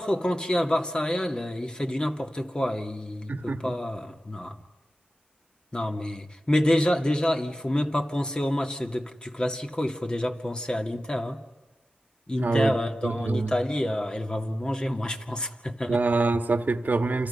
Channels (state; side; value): normal; both; correlation 0.93